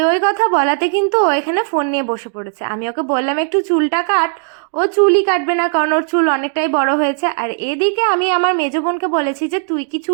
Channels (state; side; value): silent; left; digital silence